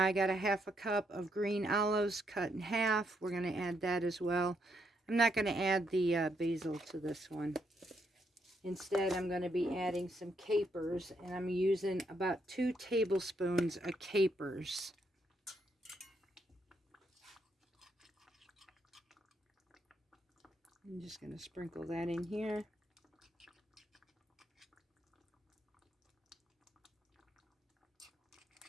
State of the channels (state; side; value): normal; both; correlation 0.77